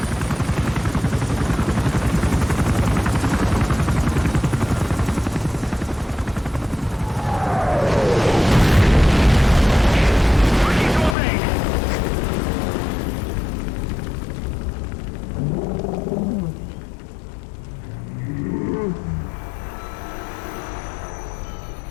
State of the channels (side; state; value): right; drops out; at 11.2 s